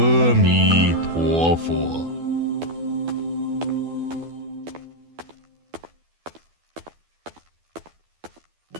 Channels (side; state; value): left; late; 12 ms